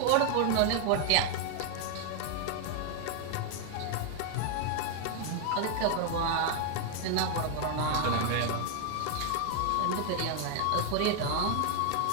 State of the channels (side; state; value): both; different; correlation 0.00